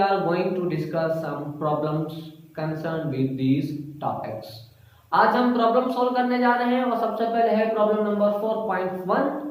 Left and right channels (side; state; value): both; identical; correlation 1.00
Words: are going to discuss some problems concern with these topics. आज हम प्रॉब्लम सॉल्व करने जा रहे हैं और सबसे पहले है problem number 4.1,